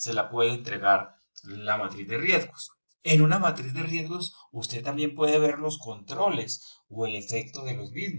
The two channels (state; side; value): inverted; both; correlation -1.00